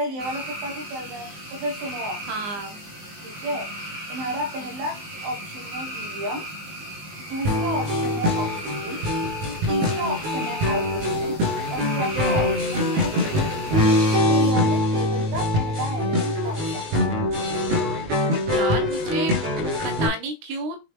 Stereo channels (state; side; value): late; left; 19 ms